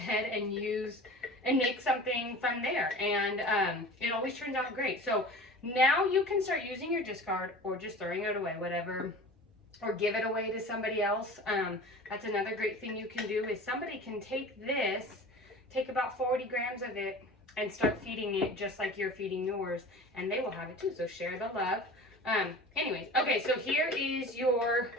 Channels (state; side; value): normal; both; correlation 0.38